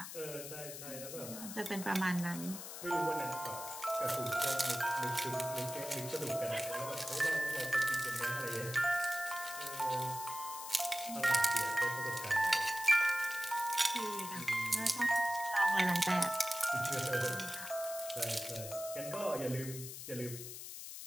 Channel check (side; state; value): left; noise; hiss, 9 dB below the sound